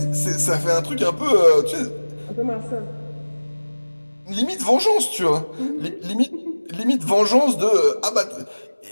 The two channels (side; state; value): both; inverted; correlation -1.00